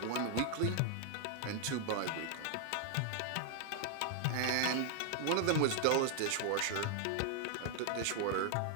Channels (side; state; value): both; different; correlation 0.00